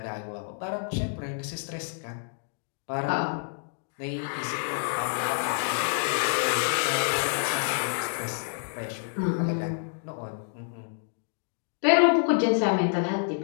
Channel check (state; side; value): silent; right; 59 dB below the other